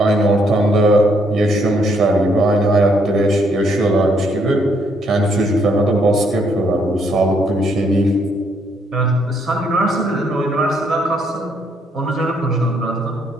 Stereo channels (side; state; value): both; normal; correlation 0.71